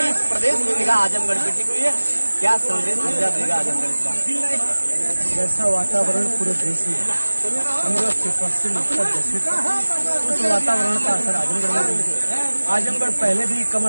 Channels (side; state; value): both; inverted; correlation -1.00